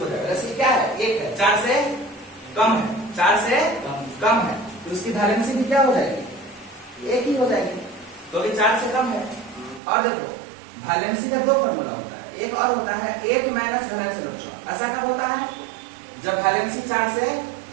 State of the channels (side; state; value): left; drops out; at 9.8 s